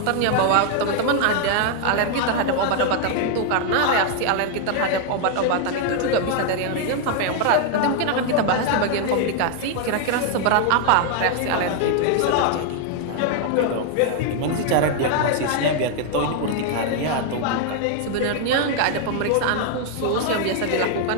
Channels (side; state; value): both; different; correlation 0.00